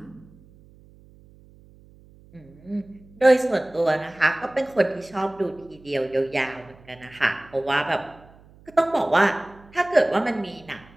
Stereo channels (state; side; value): noise; right; hum, 25 dB below the sound